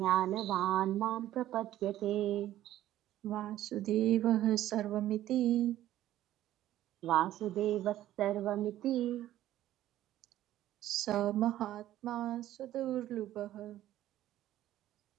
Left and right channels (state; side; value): quieter; left; 13.5 dB